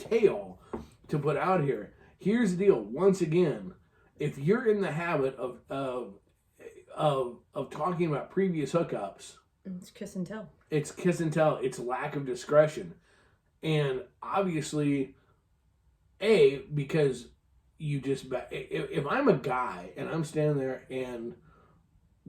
to put out here. Here's the deal. Once again, if you're in the habit of talking about previous hookups, it's kiss and tell. It's kiss and tell. It's lack of discretion. And obviously, because you just, if I'm a guy and I'm standing there and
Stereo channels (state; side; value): identical; both; correlation 1.00